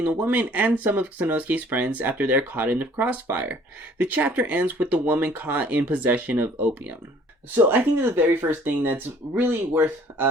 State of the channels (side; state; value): both; normal; correlation 0.56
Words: the woman and some of Sanosuke's friends after they're caught in the crossfire. The chapter ends with the woman caught in possession of opium. So I think that the very first thing that's really worth